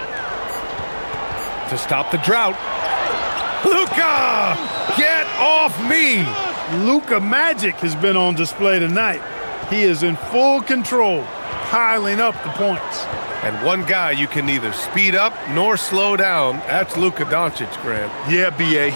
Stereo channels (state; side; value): inverted; both; correlation -1.00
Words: To stop the drought. Luka! Get off me! Luka Magic has been on display tonight. He is in full control, piling up the points. And one guy you can neither speed up nor slow down. That's Luka Doncic, Grant. Yeah, B.A.,